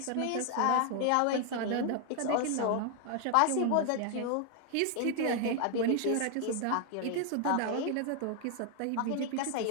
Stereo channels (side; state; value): both; different; correlation 0.00